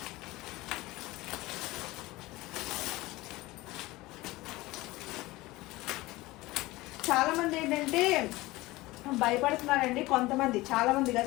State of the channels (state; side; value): quieter; right; 19.8 dB